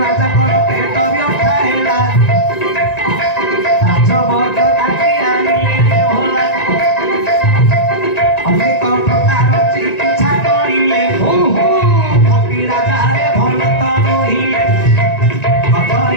ରାଜାଙ୍କର ପେଟ ବ୍ୟଥା ହେଲା ରାଜବର୍ଗ ଡାକି ଆଣିଲେ ଭଲା ଅନେକ ପ୍ରକାର ଚିକିତ୍ସା କରିଲେ କପି ରାଜାରେ ଭଲ ତ ରହିଲେ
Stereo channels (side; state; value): right; late; 1.9 ms